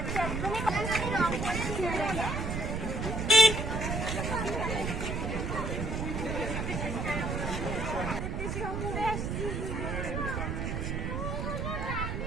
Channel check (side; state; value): right; noise; rumble, 2 dB below the sound